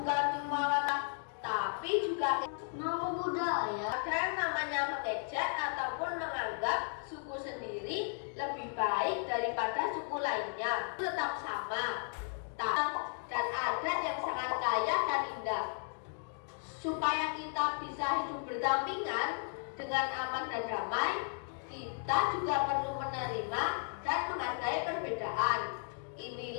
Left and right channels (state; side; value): silent; right; 54 dB below the other